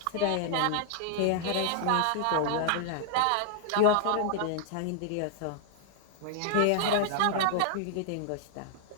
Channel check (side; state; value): both; different; correlation 0.00